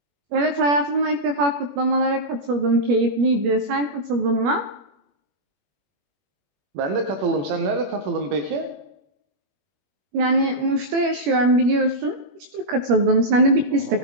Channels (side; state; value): left; late; 21 ms